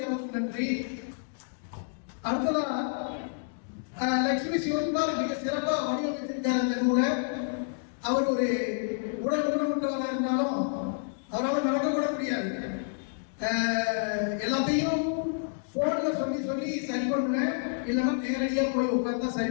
நன்றி. அடுத்ததா லட்சுமி சிவகுமார் மிக சிறப்பா வடிவமைத்திருக்காரு அந்த நூலை. அவர் ஒரு உடல் ஊனமுற்றவராக இருந்தாலும் அவரால் நடக்க கூட முடியாது. எல்லாத்தையும் போன்ல சொல்லி சரி பண்ணுவேன், இல்லைன்னா நேரடியா போய் உட்கார்ந்தா சரி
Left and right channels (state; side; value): silent; right; digital silence